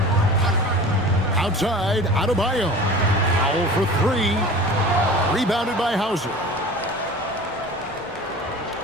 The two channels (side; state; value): both; normal; correlation 0.39